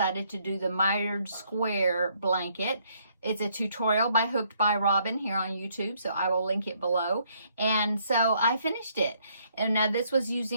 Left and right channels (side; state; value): both; inverted; correlation -0.69